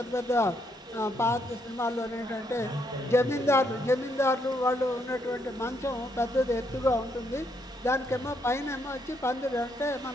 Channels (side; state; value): both; normal; correlation 0.75